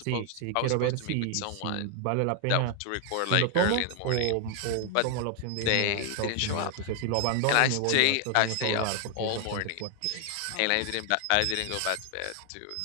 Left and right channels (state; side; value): different; both; correlation 0.00